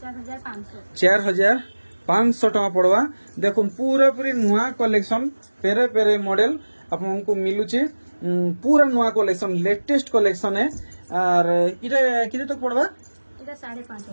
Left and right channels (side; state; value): both; inverted; correlation -1.00